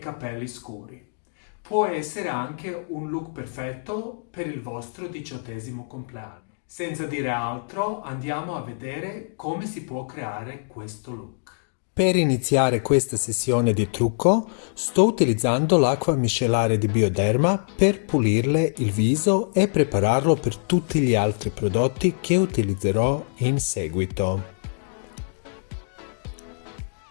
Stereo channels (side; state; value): right; silent; digital silence